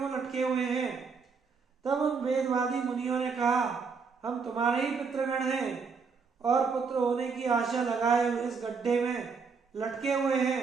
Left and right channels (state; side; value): quieter; left; 5.3 dB